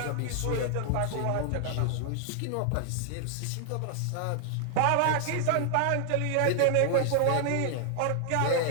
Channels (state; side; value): different; both; correlation 0.00